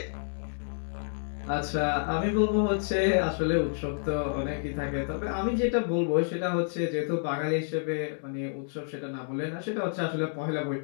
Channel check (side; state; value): right; silent; digital silence